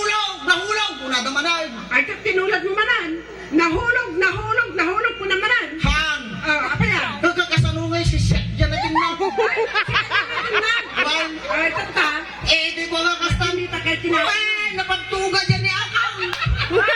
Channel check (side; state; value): both; identical; correlation 1.00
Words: Kung nadaman ay. Ay, tinulad mo manan. Nahulog ko namanan. Han! Apa yan? Nagkakasanungay si Seth, dyan natin na. Ay, tata. Di ko nga kasta. Hindi ta kayo tinawag. Ay, napagtuga dyan ni Akang.